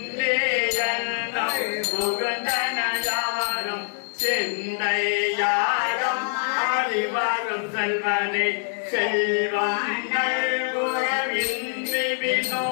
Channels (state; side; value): silent; right; digital silence